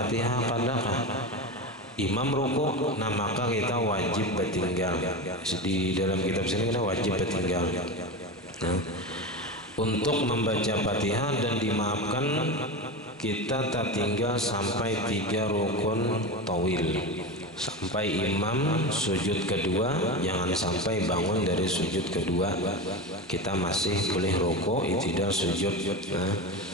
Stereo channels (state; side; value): normal; both; correlation 0.22